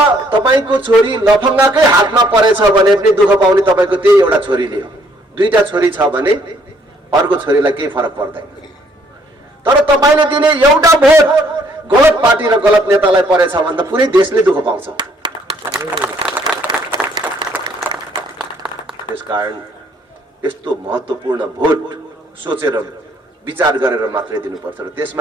तपाईको छोरी लफङ्गाकै हातमा परेछ भने पनि दुःख पाउने तपाईको त्यही एउटा छोरीले हो। दुईटा छोरी छ भने अर्को छोरीलाई केही फरक पर्दैन। तर तपाईले दिने एउटा भोट गलत पार्टी र गलत नेतालाई परेछ भने त पुरै देशले दुःख पाउँछ। त्यसकारण यस्तो महत्त्वपूर्ण भोट सोचेर विचार गरेर मात्रै दिनुपर्छ। र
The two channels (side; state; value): both; normal; correlation 0.65